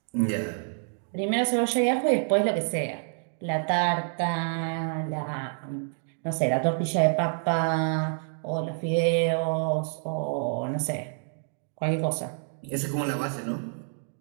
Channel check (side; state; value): left; silent; digital silence